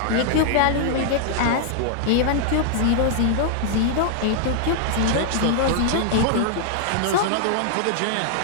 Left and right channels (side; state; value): both; different; correlation -0.01